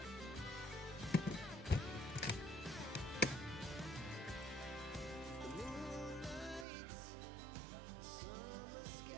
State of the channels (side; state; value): left; drops out; at 6.7 s